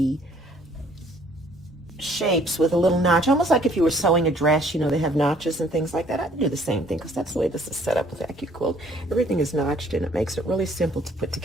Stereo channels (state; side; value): normal; both; correlation 0.60